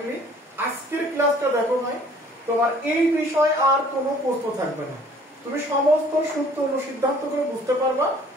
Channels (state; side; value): normal; both; correlation 0.55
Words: আজকের ক্লাসটা দেখো ভাই, তোমার এই বিষয়ে আর কোনো প্রশ্ন থাকবে না, তুমি সমস্ত সূত্র অনুসিদ্ধান্ত করে বুঝতে পারবা